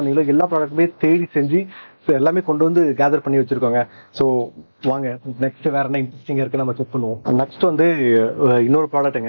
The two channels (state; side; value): inverted; both; correlation -1.00